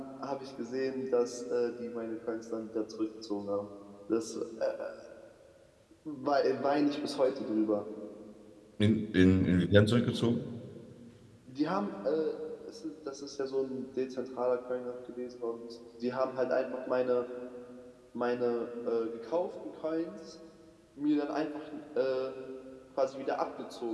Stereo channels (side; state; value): both; identical; correlation 1.00